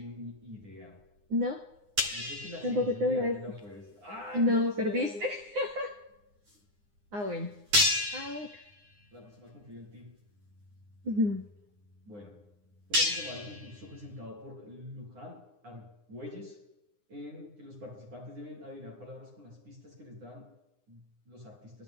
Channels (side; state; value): left; late; 9.7 ms